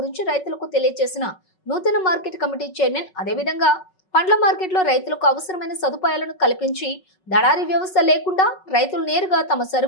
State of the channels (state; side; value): late; right; 5.4 ms